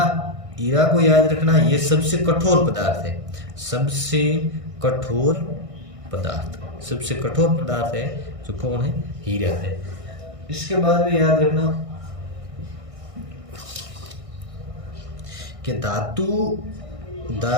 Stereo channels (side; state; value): left; late; 1.6 ms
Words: को याद रखना, ये सबसे कठोर पदार्थ है, सबसे कठोर पदार्थ है जो कौन है हीरा है। इसके बाद में याद रखना कि धातु